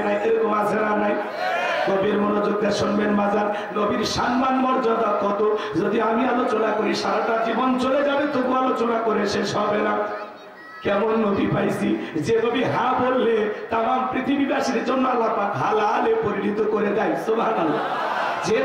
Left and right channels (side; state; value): both; identical; correlation 1.00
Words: নাই। এরকম আছে না নাই? নবীর মনোযোগ দিয়ে শুনবেন বাজার, নবীর সম্মান মর্যাদা কত যদি আমি আলোচনা করি সারাটা জীবন চলে যাবে, তবু আলোচনা করে শেষ হবে না। কেমন নবী পাইছি, যে নবী হা বললে তামাম পৃথিবীবাসীর জন্য আল্লাহ পাক হালালে পরিণত করে দেয়। সুবহানাল্লাহ। যে